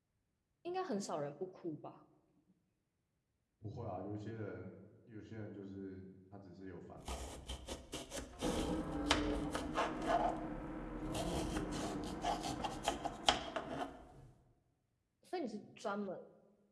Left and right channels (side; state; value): both; identical; correlation 1.00